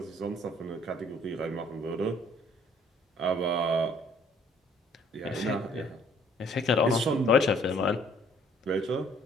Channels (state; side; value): normal; both; correlation 0.60